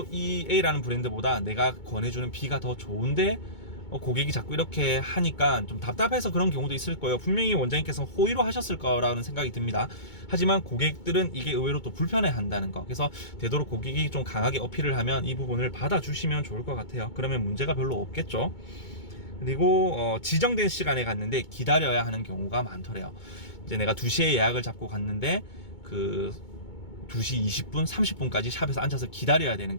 이 A라는 브랜드보다 내가 권해주는 B가 더 좋은데 고객이 자꾸 이렇게 하니까 좀 답답해서 그런 경우도 있을 거예요. 분명히 원장님께서 호의로 하셨을 거라는 생각이 듭니다. 하지만 고객들은 이게 의외로 또 불편해 한다는 거, 그래서 되도록 고객이 좀 강하게 어필을 하면 이 부분을 받아주시면 좋을 것 같아요. 그러면 문제가 별로 없겠죠. 그리고 지정된 시간에 갔는데 기다려야 하는 경우가 많더래요. 이제 내가 2시에 예약을 잡고 갔는데 그 2시 20분, 30분까지 샵에서 앉아서 기다려야 되는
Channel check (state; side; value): late; right; 2.2 ms